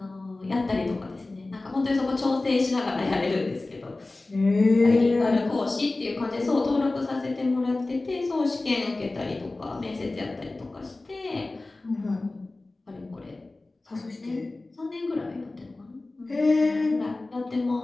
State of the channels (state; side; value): quieter; right; 3.1 dB